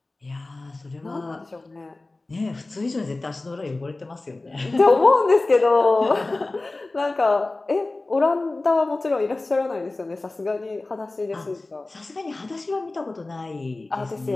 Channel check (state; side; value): quieter; right; 3.1 dB